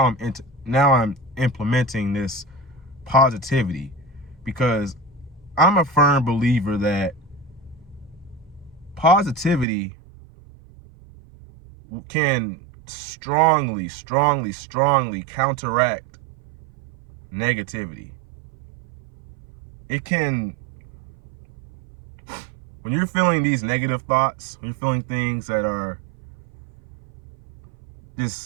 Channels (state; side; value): drops out; left; at 9.7 s